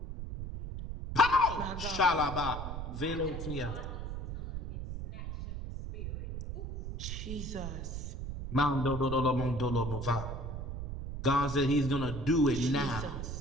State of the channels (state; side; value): noise; right; rumble, 6 dB below the sound